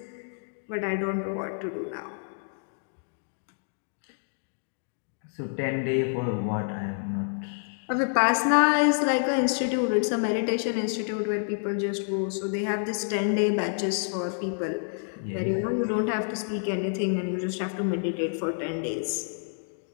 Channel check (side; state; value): right; silent; digital silence